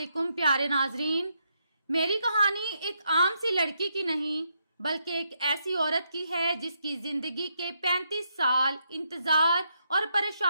پیارے ناظرین، میری کہانی ایک عام سی لڑکی کی نہیں بلکہ ایک ایسی عورت کی ہے جس کی زندگی کے 35 سال انتظار اور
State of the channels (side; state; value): both; inverted; correlation -0.79